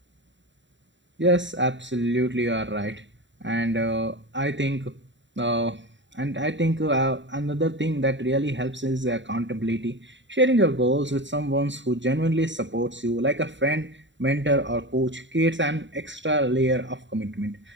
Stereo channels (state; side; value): late; left; 0.54 ms